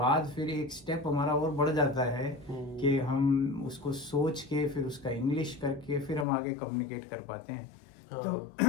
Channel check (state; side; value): drops out; right; at 6.2 s